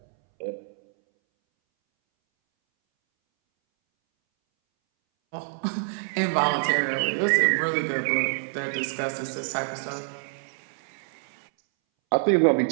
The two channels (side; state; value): left; silent; 61 dB below the other